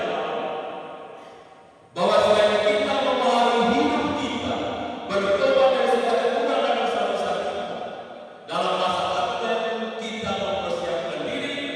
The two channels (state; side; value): identical; both; correlation 1.00